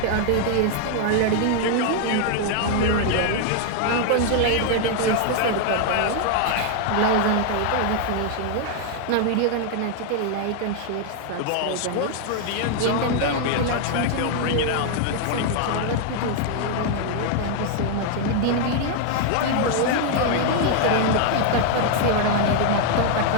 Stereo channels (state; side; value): different; both; correlation 0.00